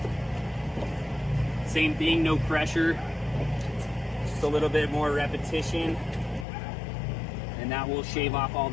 Same thing, no pressure. Just a little bit more repetition. And that will shave off all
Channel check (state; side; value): drops out; right; at 6.5 s